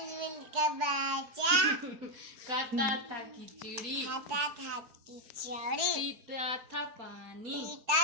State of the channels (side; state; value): left; late; 4.6 ms